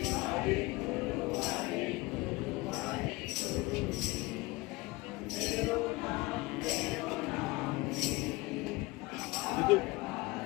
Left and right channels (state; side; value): quieter; right; 22.8 dB